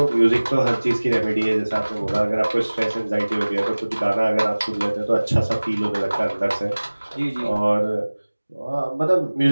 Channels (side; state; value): both; inverted; correlation -1.00